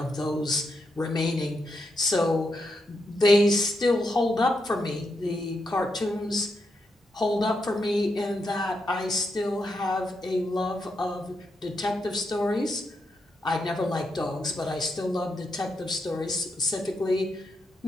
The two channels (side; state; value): both; normal; correlation 0.83